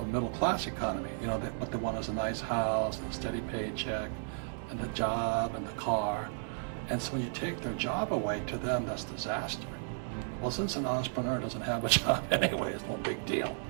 middle class economy. You know, what they want is a nice house and a steady paycheck and the job and the car. And so when you take their job away, to them, that's disaster. Well, since an entrepreneur doesn't have a job anyway, it's no big deal.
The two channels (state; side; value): silent; left; digital silence